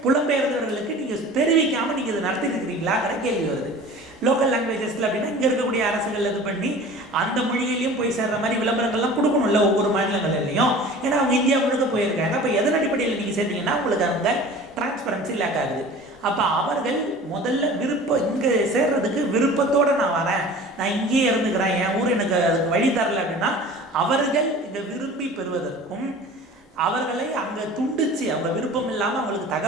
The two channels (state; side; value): normal; both; correlation 0.41